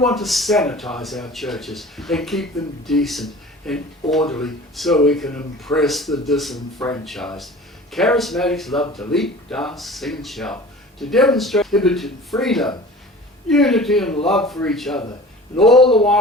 to sanitize our churches and keep them decent and orderly so we can impress the disenfranchised. Charismatics love to leap, dance, sing and shout, to demonstrate inhibited freedom, unity and love for each other, and all the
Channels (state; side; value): normal; both; correlation 0.41